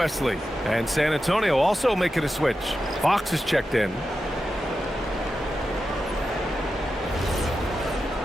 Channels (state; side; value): normal; both; correlation 0.90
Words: And San Antonio also making a switch. Fox is checked in.